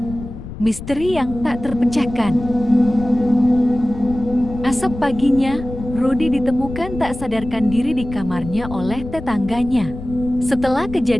Misteri yang tak terpecahkan. Esok paginya, Rudy ditemukan tak sadarkan diri di kamarnya oleh tetangganya. Setelah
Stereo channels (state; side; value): noise; left; rumble, 11 dB below the sound